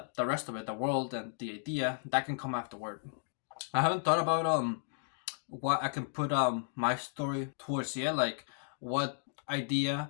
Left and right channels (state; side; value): silent; right; digital silence